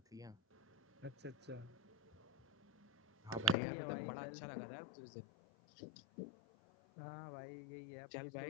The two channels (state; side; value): drops out; right; at 3.6 s